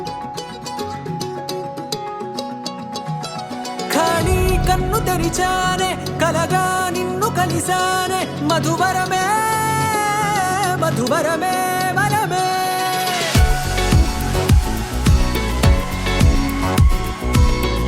ఖాళీ కన్ను తెరిచానే కలగా నిన్ను కలిసానే మధువరమే మధువరమే వరమే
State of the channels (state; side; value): identical; both; correlation 1.00